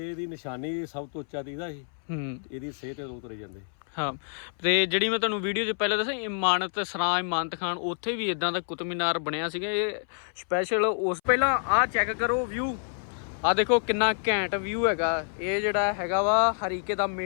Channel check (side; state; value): right; silent; 60 dB below the other